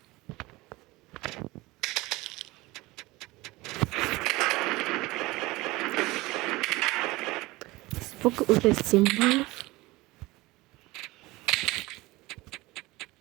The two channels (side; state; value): left; quieter; 20.8 dB